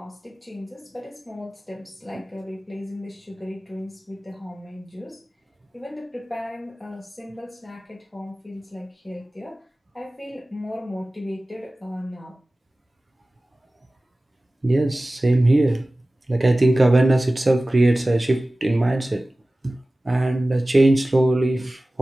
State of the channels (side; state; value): both; normal; correlation 0.97